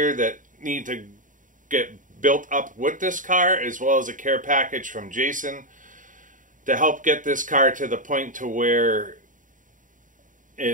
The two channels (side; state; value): left; late; 0.38 ms